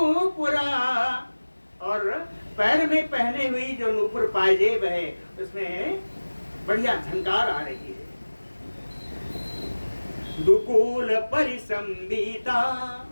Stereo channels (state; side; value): inverted; both; correlation -1.00